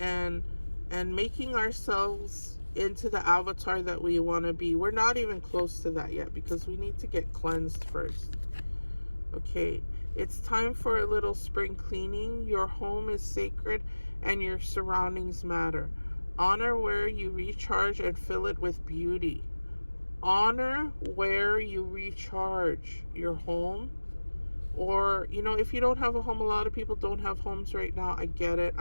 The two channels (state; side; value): inverted; both; correlation -1.00